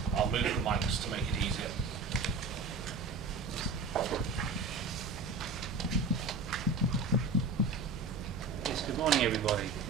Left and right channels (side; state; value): left; quieter; 4.2 dB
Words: I'll move the mics to make it easier. Yes, good morning, everybody.